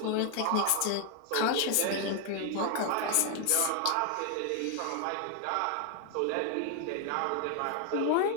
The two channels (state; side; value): different; both; correlation 0.00